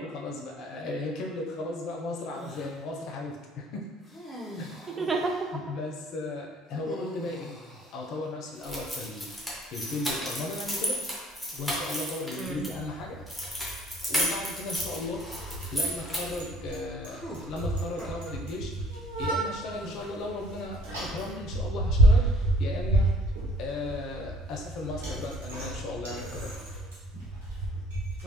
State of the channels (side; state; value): both; normal; correlation 0.57